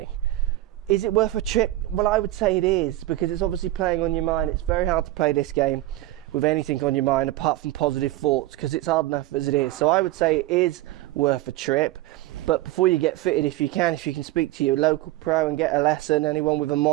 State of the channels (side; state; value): left; quieter; 16.5 dB